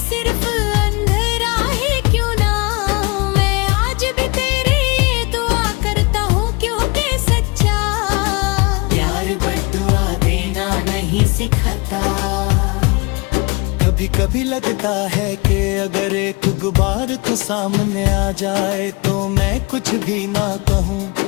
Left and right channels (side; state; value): right; quieter; 27.7 dB